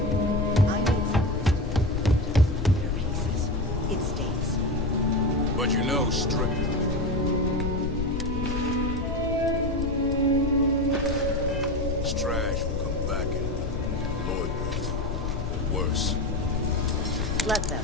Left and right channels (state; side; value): noise; left; rumble, 2 dB below the sound